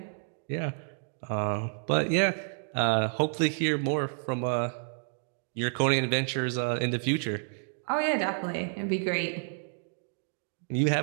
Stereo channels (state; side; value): silent; left; digital silence